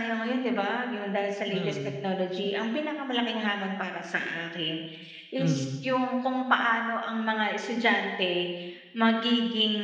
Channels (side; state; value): both; identical; correlation 1.00